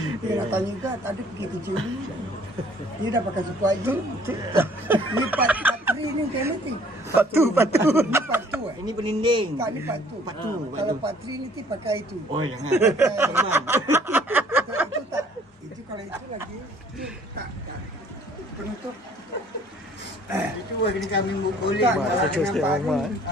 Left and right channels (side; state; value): both; normal; correlation 0.57